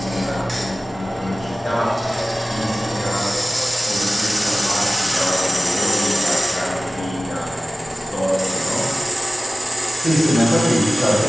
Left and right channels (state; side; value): normal; both; correlation 0.97